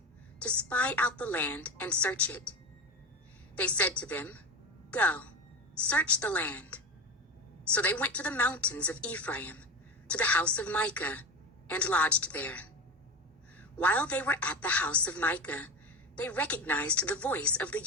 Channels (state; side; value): normal; both; correlation 0.23